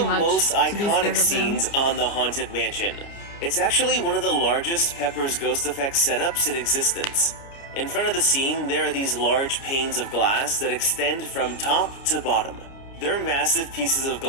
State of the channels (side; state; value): right; late; 29 ms